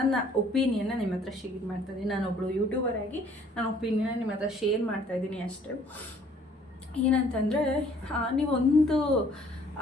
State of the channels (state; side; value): normal; both; correlation 0.59